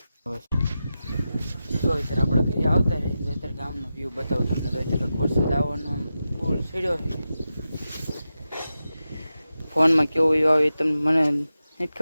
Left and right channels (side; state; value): both; inverted; correlation -0.91